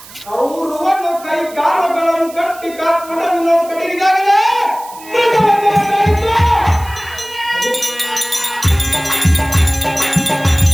ಕೌರವನು ಕೈ ಕಾಲುಗಳನ್ನು ಕಟ್ಟಿ ಕಾಲ್ಪಡವಿನ ಕಡೆಗಿದಾಗಲೇ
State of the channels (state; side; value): noise; right; hiss, 19 dB below the sound